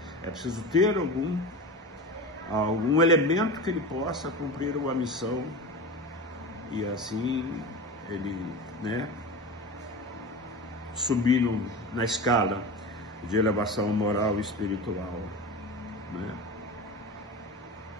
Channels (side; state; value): both; normal; correlation 0.28